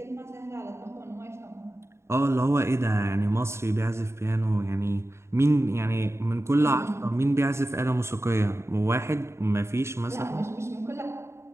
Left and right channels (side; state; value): left; late; 0.13 ms